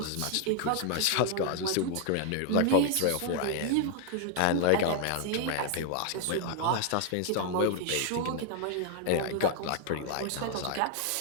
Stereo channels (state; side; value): different; both; correlation 0.00